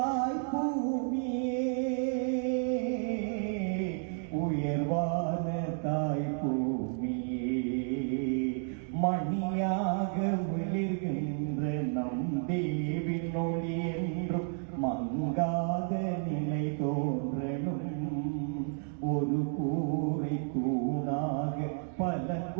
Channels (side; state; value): left; silent; 57 dB below the other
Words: பூமியே உயர்வான தாய் பூமியே மணியாக விழுகின்ற நம் தேவின் ஒளி என்றும் மங்காத நிலை தோன்றணும் ஒரு கூரை தூணாக பல